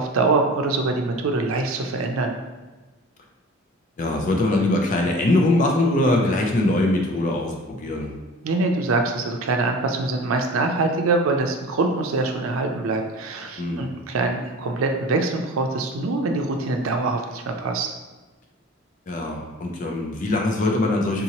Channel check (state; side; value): normal; both; correlation 0.40